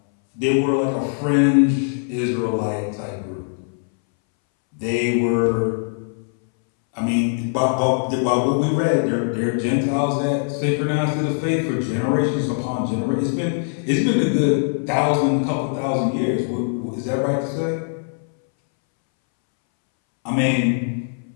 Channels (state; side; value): silent; right; 63 dB below the other